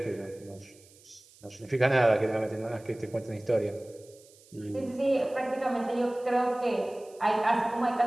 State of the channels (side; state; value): right; noise; hiss, 26 dB below the sound